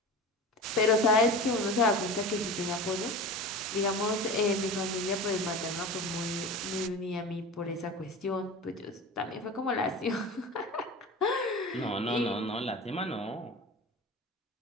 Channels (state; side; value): normal; both; correlation 0.32